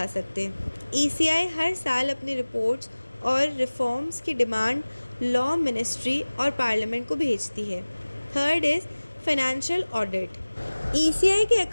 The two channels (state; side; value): inverted; both; correlation -1.00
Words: सकते। ECI हर साल अपनी रिपोर्ट्स और रिफॉर्म्स की डिमांड लॉ मिनिस्ट्री और पार्लियामेंट को भेजती है। Third is financial audit. ECI के